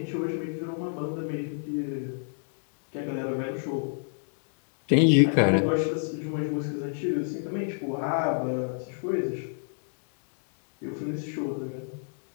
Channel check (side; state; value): right; silent; 59 dB below the other